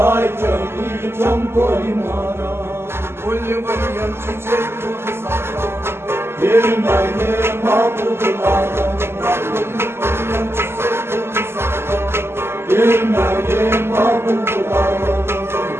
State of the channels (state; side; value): late; left; 0.12 ms